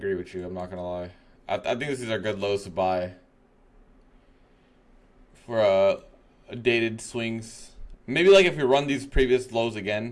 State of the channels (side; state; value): both; identical; correlation 1.00